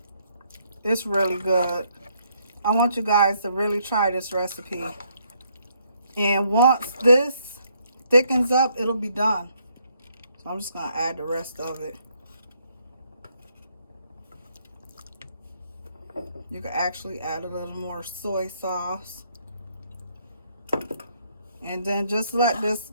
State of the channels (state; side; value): inverted; both; correlation -0.71